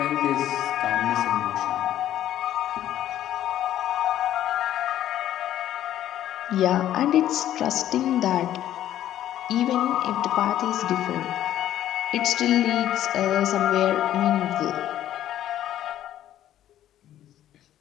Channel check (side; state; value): right; quieter; 12.1 dB